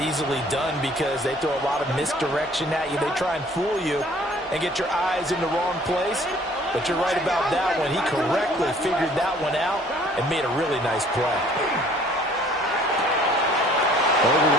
easily done because they throw a lot of misdirection at you. They try and fool you and get your eyes in the wrong place. But you're right about that one. He correctly figured that one out and made a really nice play. Over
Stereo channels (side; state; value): both; normal; correlation 0.56